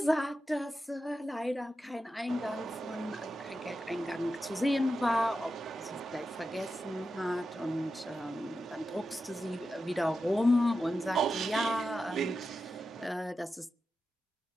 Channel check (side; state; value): both; normal; correlation 0.90